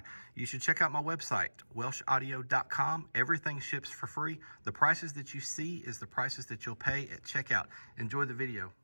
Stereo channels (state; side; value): inverted; both; correlation -1.00